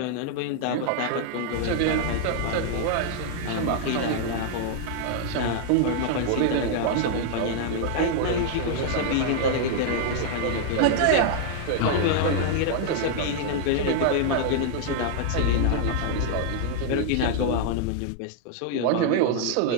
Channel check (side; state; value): both; different; correlation 0.00